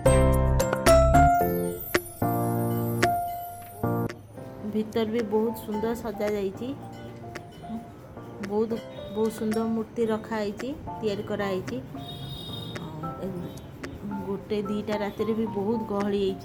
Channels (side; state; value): both; identical; correlation 1.00